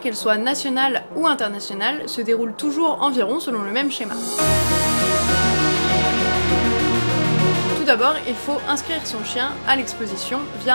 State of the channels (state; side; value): inverted; both; correlation -1.00